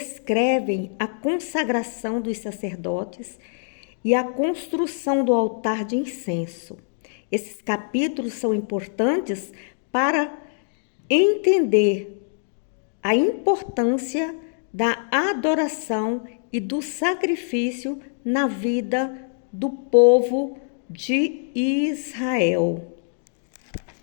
a consagração dos sacerdotes e a construção do altar de incenso. Esses capítulos são importantes para entender a importância da adoração e do sacrifício na vida do povo de Israel.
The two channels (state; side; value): silent; right; digital silence